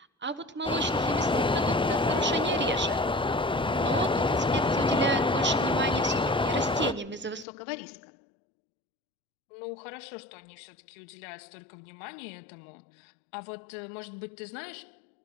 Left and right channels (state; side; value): drops out; right; at 7.5 s